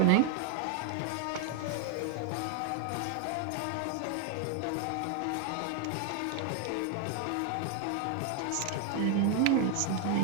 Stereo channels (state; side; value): different; both; correlation 0.01